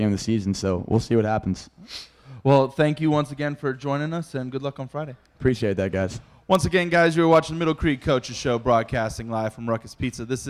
of the season. So we'll see what happens. Well, thank you once again for joining us, and good luck on Friday. Appreciate that, guys. Once again, guys, you're watching the Middle Creek Coaches Show, broadcasting live from Ruckus Pizza. This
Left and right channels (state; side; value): identical; both; correlation 1.00